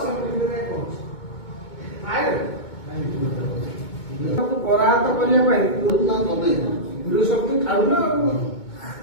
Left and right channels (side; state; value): right; late; 2.2 ms